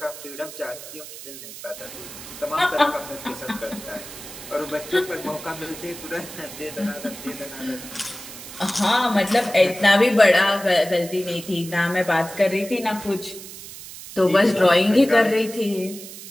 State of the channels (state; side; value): noise; right; hiss, 13 dB below the sound